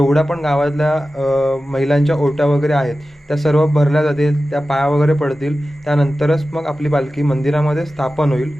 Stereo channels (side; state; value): both; normal; correlation 0.94